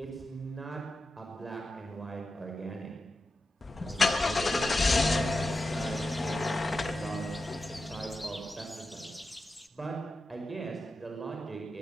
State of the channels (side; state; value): both; normal; correlation 0.91